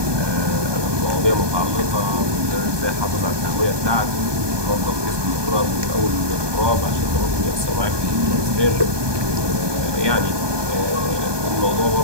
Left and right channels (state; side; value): late; left; 1.2 ms